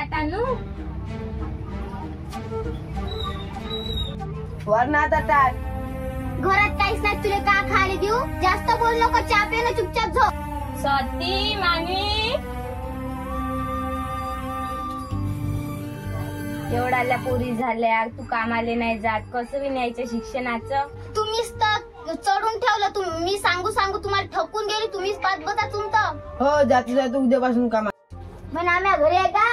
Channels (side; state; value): both; identical; correlation 1.00